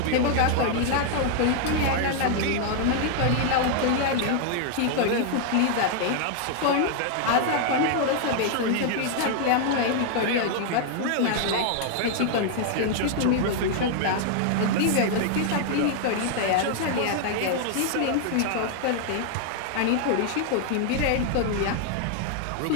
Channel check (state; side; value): different; both; correlation 0.00